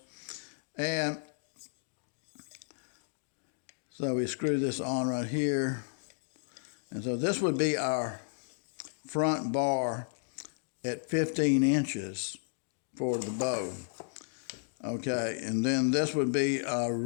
And so we screw this on right here. And so this would be our front bar at 15 inches for the bow. Okay, and then this would be our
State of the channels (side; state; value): right; silent; digital silence